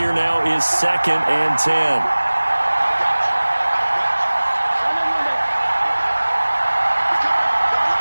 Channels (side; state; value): both; inverted; correlation -1.00